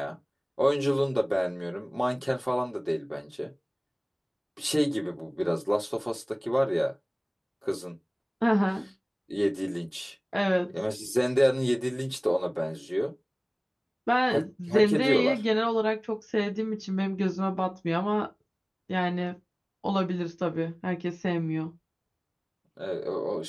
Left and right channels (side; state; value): both; identical; correlation 1.00